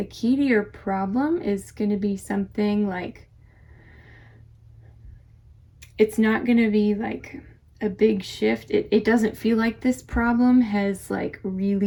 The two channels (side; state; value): both; identical; correlation 1.00